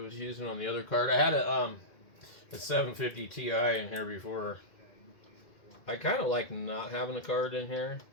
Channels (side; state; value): right; late; 2.3 ms